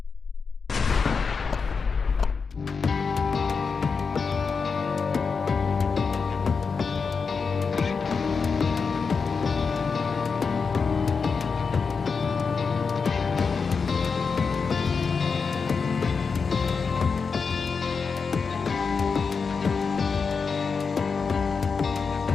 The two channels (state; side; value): quieter; right; 5.2 dB